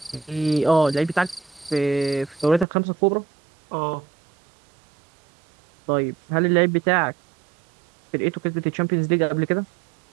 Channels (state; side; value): drops out; left; at 2.7 s